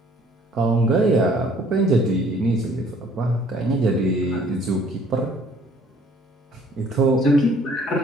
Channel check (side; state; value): both; normal; correlation 0.57